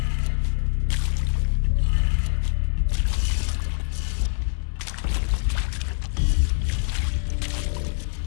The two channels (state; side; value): silent; right; 62 dB below the other